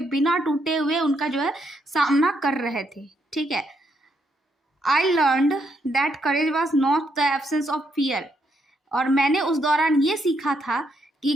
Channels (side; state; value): both; normal; correlation 0.76